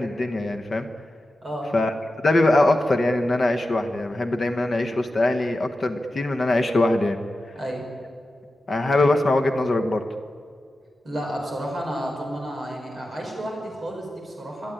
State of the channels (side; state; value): both; normal; correlation 0.92